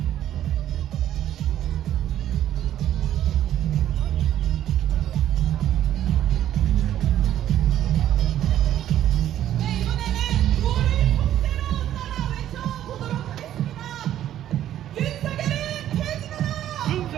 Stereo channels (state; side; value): quieter; left; 11.7 dB